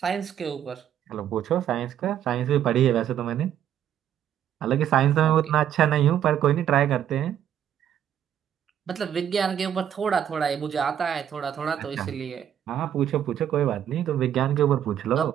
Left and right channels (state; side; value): quieter; left; 10.0 dB